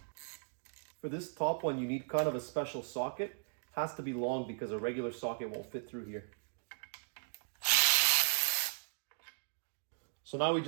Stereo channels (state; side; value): silent; left; digital silence